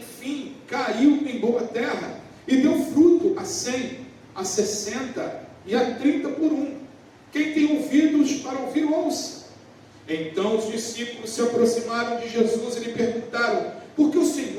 caiu em boa terra, e deu fruto a 100, a 60 e a 30 por um. Quem tem ouvidos para ouvir, ouça. Então os discípulos se aproximaram de Jesus e lhe perguntaram: por que o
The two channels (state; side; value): identical; both; correlation 1.00